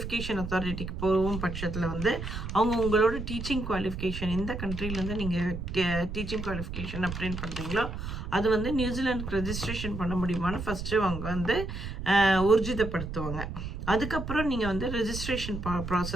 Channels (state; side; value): noise; right; rumble, 6 dB below the sound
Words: அத்தாரிட்டிக்கு போகும் பட்சத்தில் வந்து அவங்க உங்களோட டீச்சிங் குவாலிஃபிகேஷன் எந்த கண்ட்ரிலேருந்து நீங்கள் டீச்சிங் குவாலிஃபிகேஷன் அப்டேட் பண்ணுறீங்களோ அது வந்து நியூசிலாண்டுக்கு ரெஜிஸ்ட்ரேஷன் பண்ண முடியுமான்னு ஃபஸ்ட்டு அவங்க வந்து ஊர்ஜிதப்படுத்துவாங்க. அதுக்கப்புறம் நீங்கள் வந்து ரெஜிஸ்ட்ரேஷன்